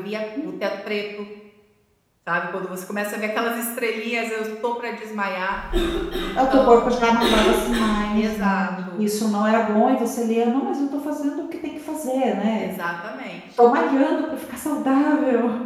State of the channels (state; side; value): identical; both; correlation 1.00